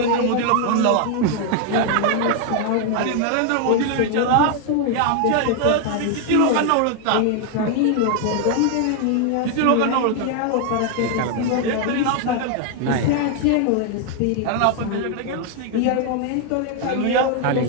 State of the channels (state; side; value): different; both; correlation 0.00